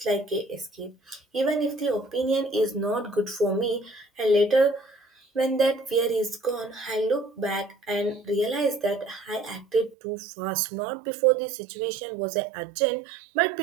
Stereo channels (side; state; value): left; drops out; at 10.0 s